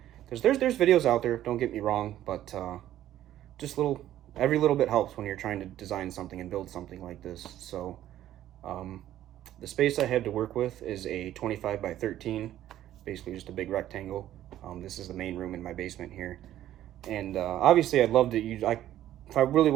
There's videos out there, don't get me wrong, but just every little bit helps when you're trying to design something and build something like this. So the space I have to work with is a 25 by 13, basically just a big rectangle. This is the main room in my basement here, and obviously I'd love to use. If I really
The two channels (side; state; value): left; quieter; 12.7 dB